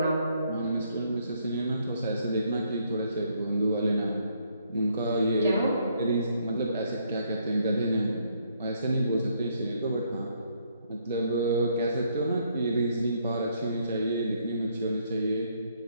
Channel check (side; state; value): both; inverted; correlation -0.70